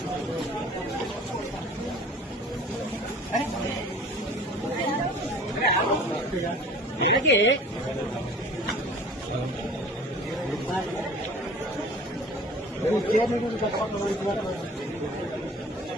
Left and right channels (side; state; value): both; normal; correlation 0.45